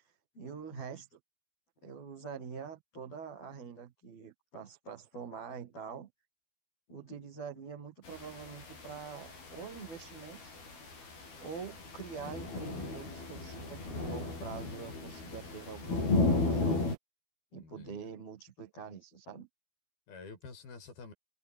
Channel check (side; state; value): right; late; 12 ms